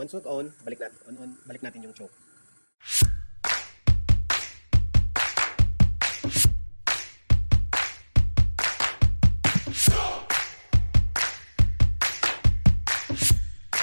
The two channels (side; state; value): both; inverted; correlation -1.00